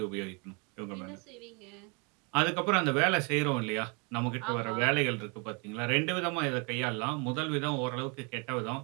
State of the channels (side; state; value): left; quieter; 32.1 dB